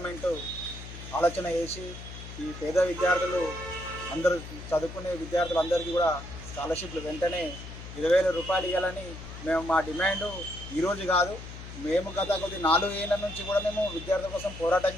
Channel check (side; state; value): left; noise; hum, 12 dB below the sound